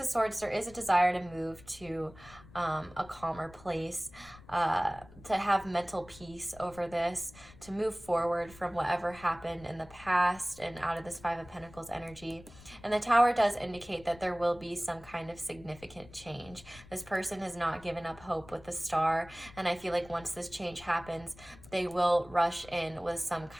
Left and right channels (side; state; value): left; noise; rumble, 21 dB below the sound